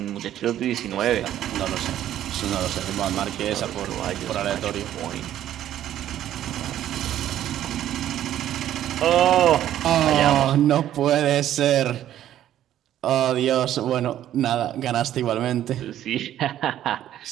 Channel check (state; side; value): quieter; left; 11.9 dB